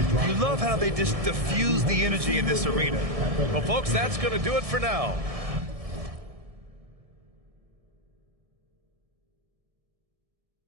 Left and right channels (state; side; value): late; left; 1.7 ms